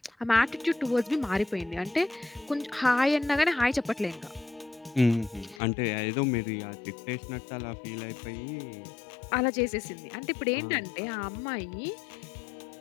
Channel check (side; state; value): right; drops out; at 5.6 s